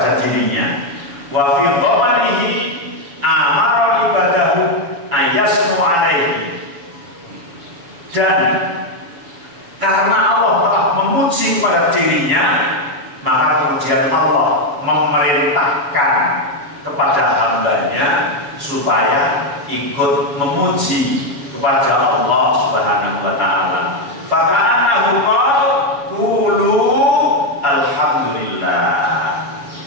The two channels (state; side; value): late; left; 7.0 ms